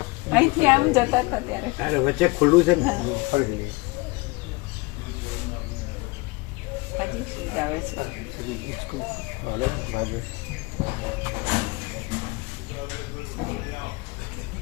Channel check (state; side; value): quieter; right; 24.7 dB